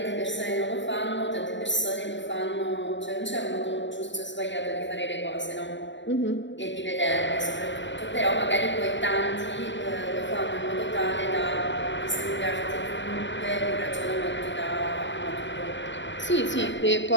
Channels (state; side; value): late; right; 0.53 ms